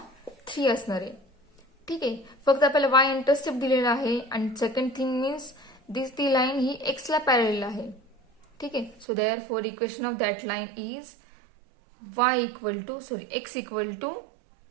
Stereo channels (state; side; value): drops out; left; at 9.1 s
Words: असणार आहे. ठीक आहे, फक्त आपल्याला वाय इंटरसेप्ट दिलेला आहे आणि सेकंड थिंग मीन्स ती लाईन ही एक्सला पॅरल आहे. ठीक आहे, so therefore equation of that line is x equal to